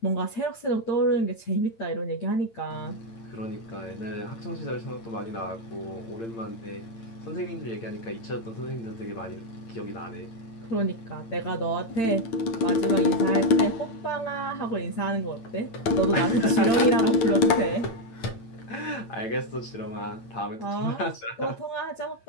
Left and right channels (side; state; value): right; late; 8.8 ms